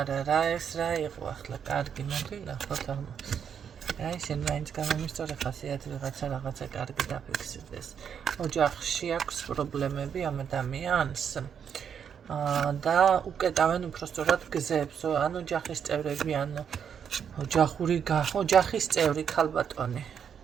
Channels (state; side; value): quieter; left; 7.7 dB